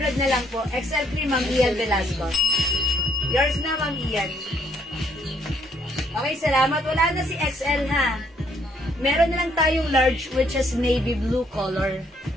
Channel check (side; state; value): both; normal; correlation 0.69